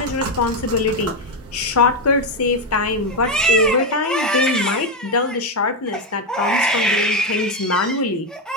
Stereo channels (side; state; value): both; normal; correlation 0.08